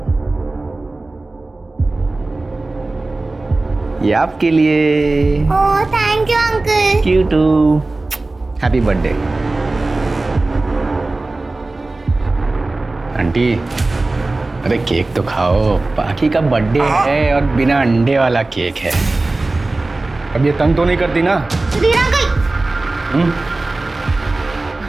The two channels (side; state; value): left; quieter; 3.1 dB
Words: ये आपके लिए। Oh thank you uncle. You too. Happy birthday aunty. अरे केक तो खाओ, बाकी का बर्थडे है और बिना अंडे वाला केक है। अब ये तंग तो नहीं करती ना? सुधीर अंकल।